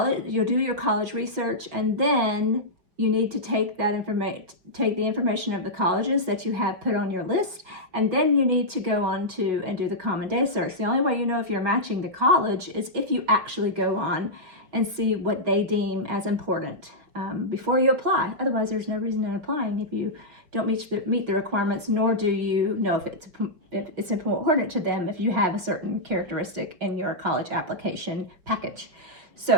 you'll do your college research, and then you need to take the information of the colleges that you have put on your list, and then you need to go on to and do the common data search. The only way you know if you're matching the college is if you actually go on and see what they deem as important before you apply. Otherwise, there's no reason in applying if you don't meet the requirements, nor do you know if it's important to them if you have a certain characteristic in your college application package.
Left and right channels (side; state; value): left; late; 5.0 ms